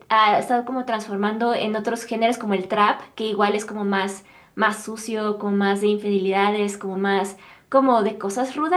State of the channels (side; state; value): both; identical; correlation 1.00